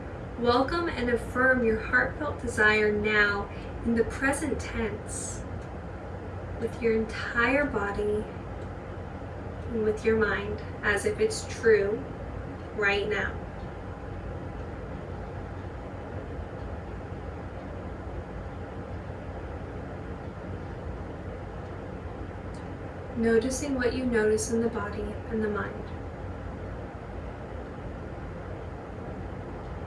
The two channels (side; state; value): both; identical; correlation 1.00